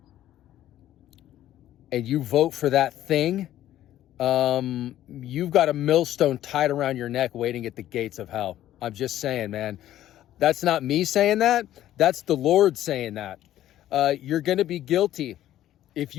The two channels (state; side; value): quieter; right; 12.9 dB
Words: and you vote for that thing, you've got a millstone tied around your neck waiting at the gates of hell. I'm just saying, man. That's not me saying that. That's the Lord saying that. You're going to be guilty if